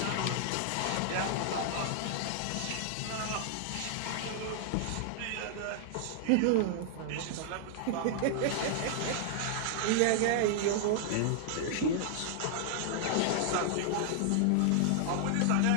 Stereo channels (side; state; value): both; different; correlation -0.01